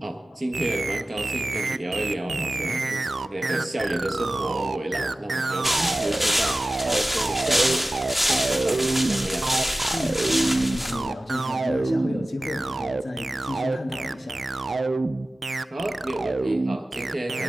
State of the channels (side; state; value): both; normal; correlation 0.96